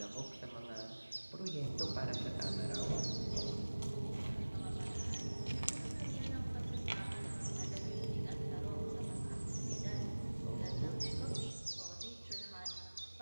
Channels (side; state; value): both; inverted; correlation -1.00